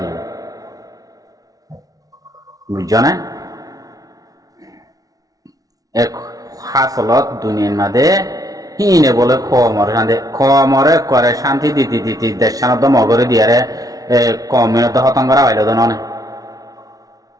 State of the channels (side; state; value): left; late; 0.18 ms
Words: বুঝছো না এক হাসলত দুনিয়ার মাঝে হিনে বলে খমরে করে শান্তি দিতে দেশ সানত মগরে দিয়ারে কমিনত হতঙ্গরা হইল তো ননে